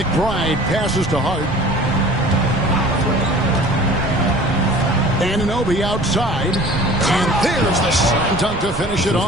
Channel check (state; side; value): noise; right; rumble, 10 dB below the sound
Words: passes to Hart. Anunoby outside. And there's the slam dunk to finish it